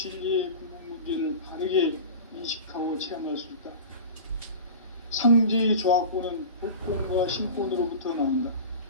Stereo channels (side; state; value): both; inverted; correlation -0.33